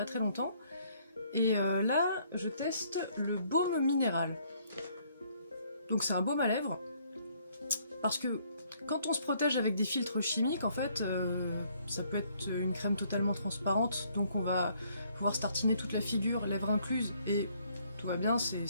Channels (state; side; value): inverted; both; correlation -0.66